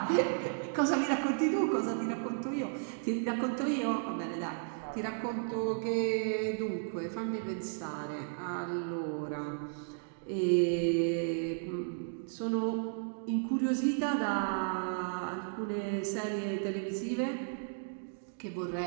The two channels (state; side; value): silent; left; digital silence